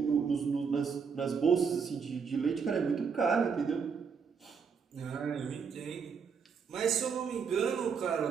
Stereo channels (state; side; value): quieter; left; 6.0 dB